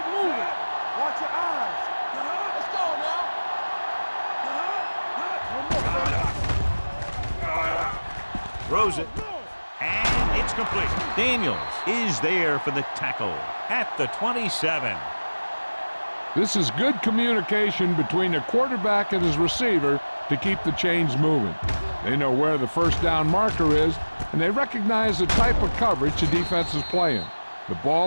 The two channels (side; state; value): both; inverted; correlation -1.00